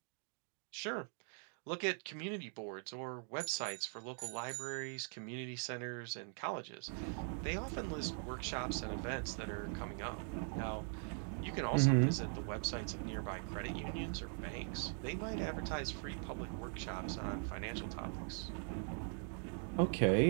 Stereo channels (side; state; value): left; silent; 50 dB below the other